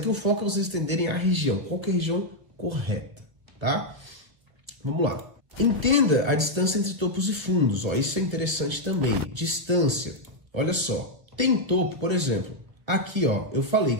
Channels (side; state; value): left; late; 1.0 ms